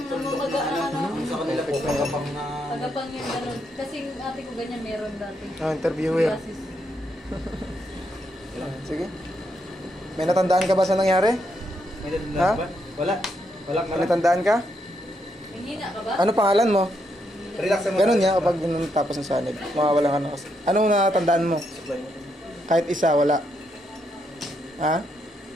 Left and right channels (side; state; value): both; normal; correlation 0.78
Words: namamagaan ano. Yung sa kanila po, kapag na... Tagapang yung ganun. Kasi yung ate ko ganyan meron dati. Oh, interviewer. Psoriasis. Sige. May natandaan ka ba sa nangyari? May dadala Ha? ba? Wala. Wala ka May natandaan ka? May hina ka ba? Ano pangalan mo? Relax mo. Ganun niya kapag tapos ng sanib. Mawawala ka na kasi. Anong natandaan mo? Kahit isa, wala. Ha?